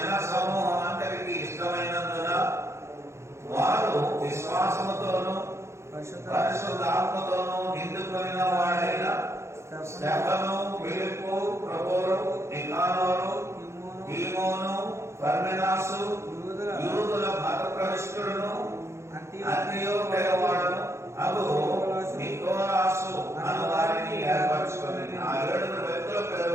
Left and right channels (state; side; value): late; left; 0.13 ms